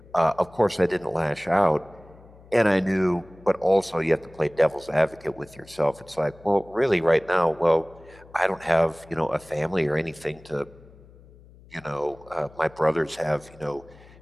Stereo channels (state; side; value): noise; left; hum, 23 dB below the sound